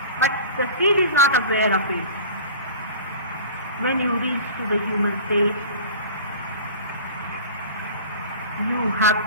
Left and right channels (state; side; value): inverted; both; correlation -0.40